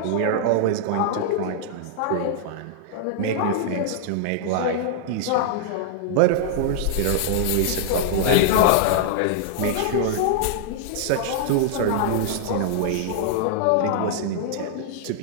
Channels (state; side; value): different; both; correlation -0.01